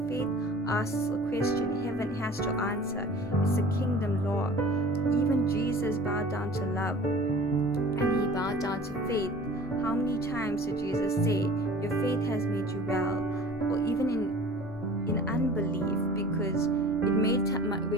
faith asks a question, heaven has to answer. It's a kingdom law. Even Jesus bowed down to love, and he bowed down to faith. How many times did Jesus say, your faith has made you well? Or even in unbelief, because it made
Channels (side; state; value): both; normal; correlation 0.44